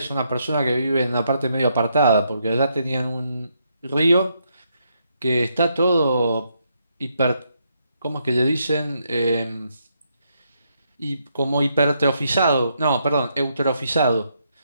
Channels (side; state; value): both; inverted; correlation -0.77